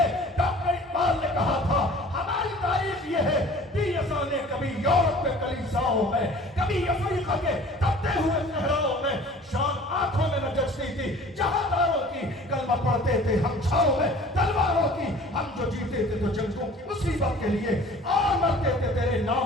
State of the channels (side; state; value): both; normal; correlation 0.47